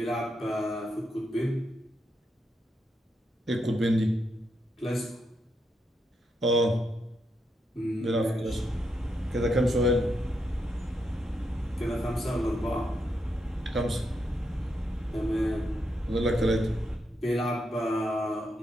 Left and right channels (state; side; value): normal; both; correlation 0.81